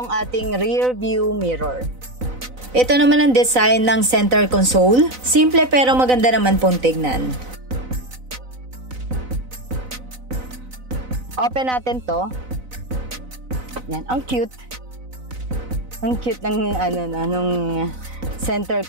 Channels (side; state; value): left; late; 4.0 ms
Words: ating rear view mirror. Ito naman ang design ng center console. Simple pero maganda naman pong tignan. Open natin to. Yan, ang cute. Ang cute ng nung center